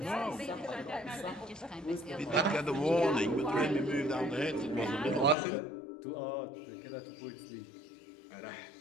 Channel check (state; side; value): drops out; right; at 5.4 s